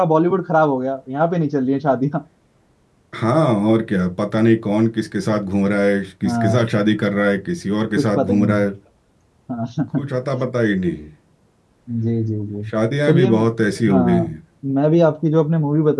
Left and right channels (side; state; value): both; identical; correlation 1.00